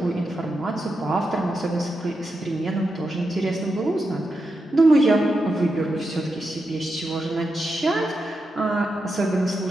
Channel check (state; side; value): normal; both; correlation 0.87